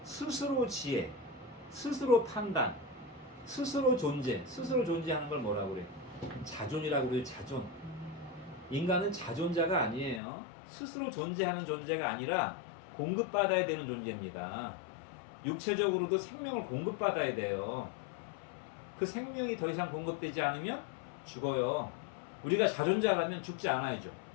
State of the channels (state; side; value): drops out; right; at 10.2 s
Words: 스스로 지혜, 스스로 판단, 스스로 존재, 스스로 존재하는 걸 뭐라고 그래? 자존이라고 그래요. 자존. 인간은 자존자가 아니에요. 스스로 존재하는 존재가 아니라 공급받아야 되는 존재입니다. 육체적으로도 생명을 공급받아야 돼요. 그 생명이 더 이상 공급되지 않으면 죽어요. 우리가 자존자라면 죽지 않아야죠.